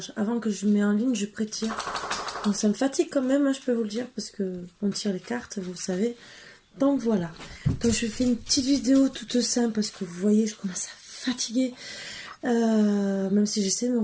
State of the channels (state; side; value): identical; both; correlation 1.00